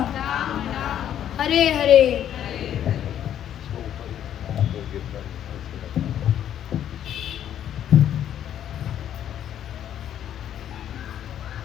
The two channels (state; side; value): quieter; right; 10.4 dB